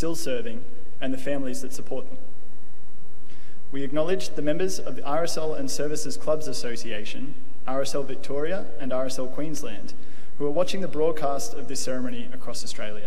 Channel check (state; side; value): noise; left; rumble, 19 dB below the sound